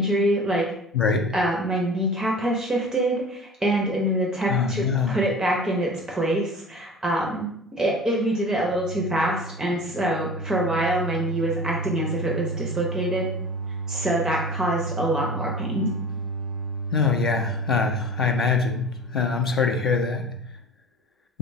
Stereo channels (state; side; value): normal; both; correlation 0.38